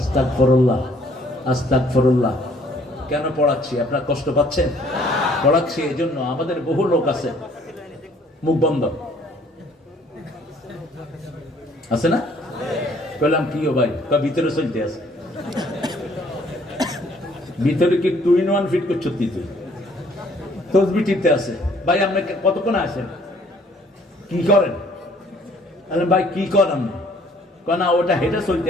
আস্তাগফিরুল্লাহ। কেন পড়াচ্ছি? আপনারা কষ্ট পাচ্ছেন? পড়াচ্ছি এই জন্য, আমাদের বহু লোক আছে মুখ বন্ধ আছে না? বললাম কি ও ভাই, ভিতরে চলতে আছে, ভিতরে কি 2 in 1 ফিট করছো তুই? তসবি টিপতে আছে। ভাই আপনি কতক্ষণ আসেন, কি করেন? ভাই কি করেন? না ওটা হেঁটে চলতে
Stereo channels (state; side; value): normal; both; correlation 0.60